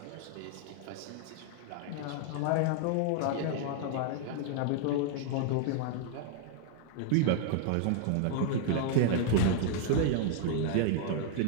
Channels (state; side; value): different; both; correlation -0.01